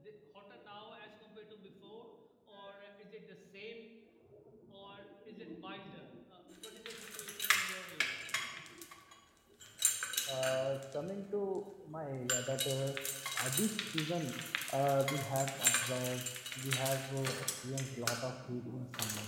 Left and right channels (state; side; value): identical; both; correlation 1.00